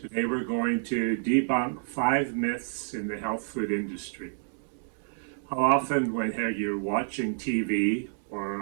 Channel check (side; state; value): left; silent; digital silence